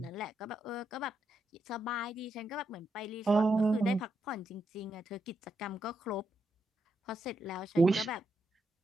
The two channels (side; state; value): both; normal; correlation 0.81